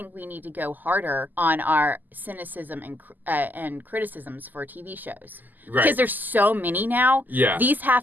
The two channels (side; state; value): left; late; 0.085 ms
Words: we need to go harder on our cynicism and criticisms for TV shows. Right. Because there's so many now. Yeah. These